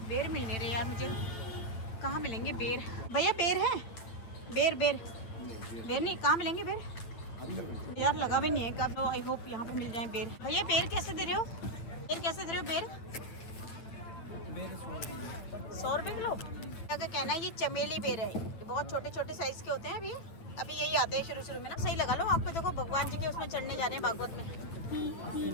बेर मिलने रहे यार मुझे। कहाँ मिलेंगे बेर भैया? बेर है? बेर नहीं, कहाँ मिलेंगे बेर यार? लगा भी नहीं है कब। आई होप यहाँ पे मिल जाए बेर। भैया बेर कैसे दे रहे हो? बेर कैसे दे रहे हो? बेर 100 रुपये किलो। क्या कहना है, ये चमेली बेर है, ये बहुत छोटे छोटे साइज के होते हैं। अभी यही आते हैं शुरू में ना। सही लगा लो आपको। देखो भगवान जी के उसमें चढ़ने जा रहे हैं भागवत में।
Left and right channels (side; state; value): right; late; 8.9 ms